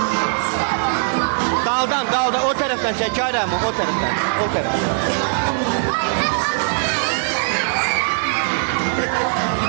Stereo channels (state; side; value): silent; left; digital silence